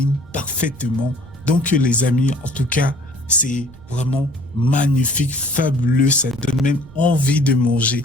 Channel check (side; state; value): right; noise; rumble, 21 dB below the sound